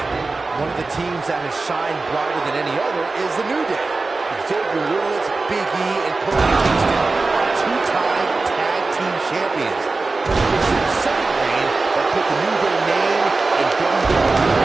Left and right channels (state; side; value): quieter; left; 3.7 dB